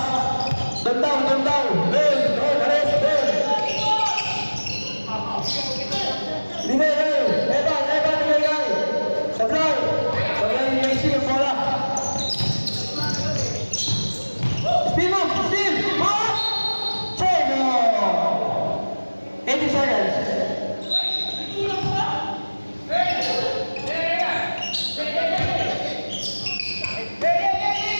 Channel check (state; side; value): inverted; both; correlation -1.00